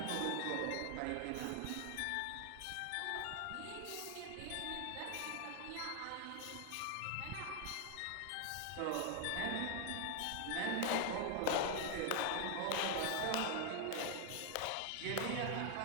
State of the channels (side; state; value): both; different; correlation 0.00